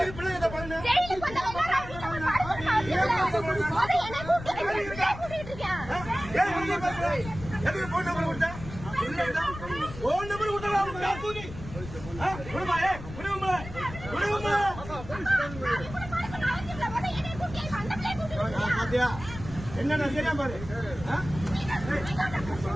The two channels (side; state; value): left; noise; rumble, 12 dB below the sound